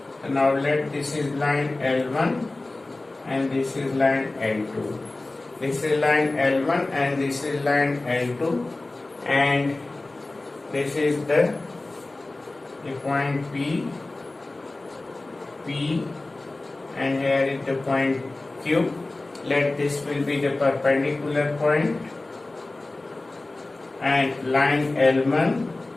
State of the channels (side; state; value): right; quieter; 3.0 dB